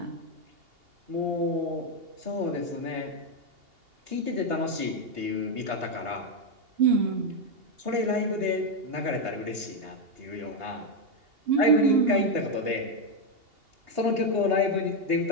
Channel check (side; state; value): left; late; 2.8 ms